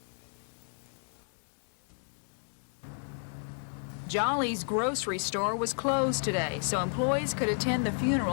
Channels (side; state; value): right; silent; 56 dB below the other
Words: Jolly's grocery store was closed today, so employees could attend the